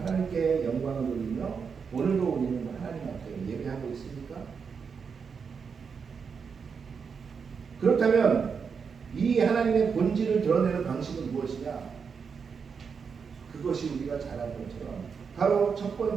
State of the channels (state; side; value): quieter; left; 6.0 dB